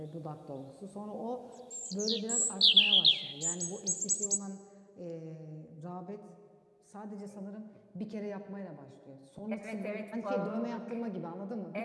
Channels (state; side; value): identical; both; correlation 1.00